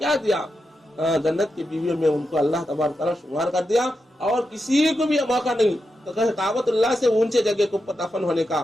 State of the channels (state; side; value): normal; both; correlation 0.87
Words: دیا، جنت کی بیویوں میں ان کو اللہ تبارک تعالیٰ شمار کر دیا، اور کسی کو بھی موقع نہیں تو کہ کعبۃ اللہ سے اونچے جگہ کے اوپر دفن ہونے کا،